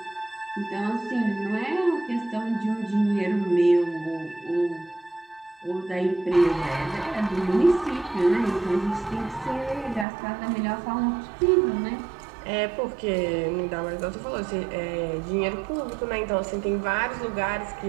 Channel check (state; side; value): drops out; left; at 10.1 s